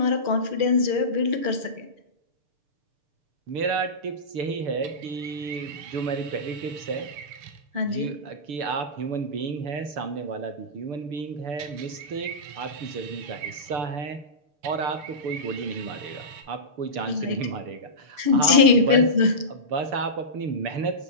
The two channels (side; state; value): left; late; 6.7 ms